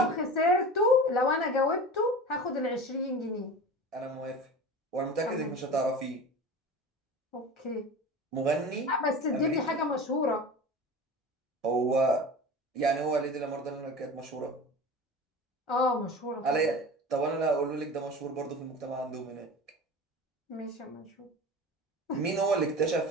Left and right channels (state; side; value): normal; both; correlation 0.33